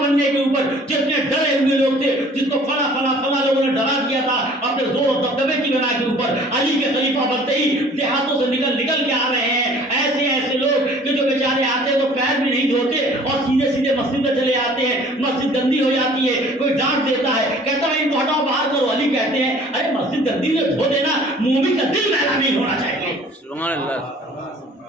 بننے کے اوپر جتنے ڈرے ہوئے لوگ تھے، جس کو فلاں لوگوں نے ڈرا دیا تھا اپنے زور و دبدبے کی بنا کے اوپر، علی کے خلیفہ بنتے ہی دیہاتوں سے نکل کے آ رہے ہیں. ایسے لوگ کہ جو بیچارے آتے ہیں تو پیر بھی نہیں دھوتے اور سیدھے مسجد میں چلے آتے ہیں. مسجد گندی ہو جاتی ہے، کوئی ڈانٹ دیتا ہے، کہتا ہے ان کو ہٹاؤ باہر کرو. علی کہتے ہیں ارے مسجد گندی ہے دھو دینا، مومن کا دل میلا نہیں ہونا چاہیے. سبحان اللہ.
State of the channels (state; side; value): normal; both; correlation 0.52